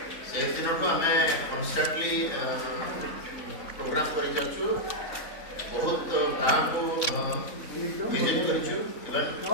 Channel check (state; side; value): late; right; 3.6 ms